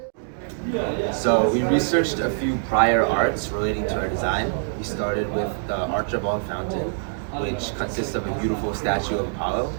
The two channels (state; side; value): silent; left; digital silence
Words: So we researched a few prior arts relating to our design. We started with the Archibald Fountain, which consists of a beautiful statue of Apollo,